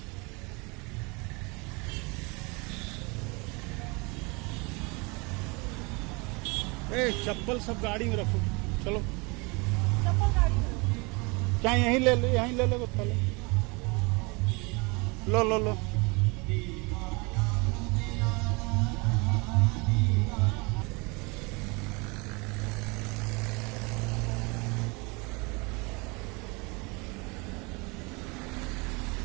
चप्पल सब गाड़ी में रखो, चलो चप्पल गाड़ी में क्या यहीं ले लो, यहीं ले लो पहले, लो लो लो।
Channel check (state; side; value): quieter; left; 28.4 dB